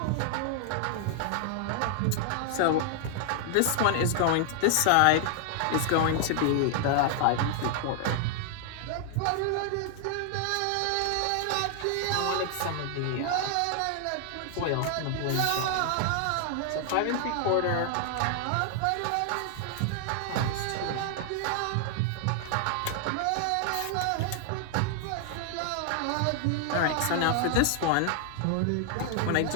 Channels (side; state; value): both; different; correlation 0.00